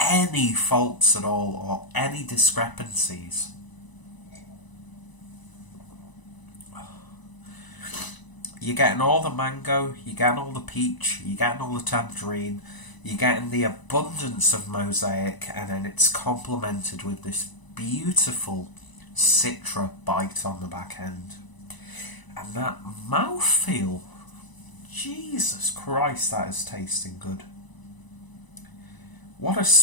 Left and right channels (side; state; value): right; late; 1.0 ms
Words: faults at all or any discrepancies. You're getting all the mango, you're getting all the peach, you're getting all the tangerine, you're getting the abundance of mosaic, and then it's complemented with this beautiful citra bite on the back end. And that mouthfeel, Jesus Christ, that is tasting good. What a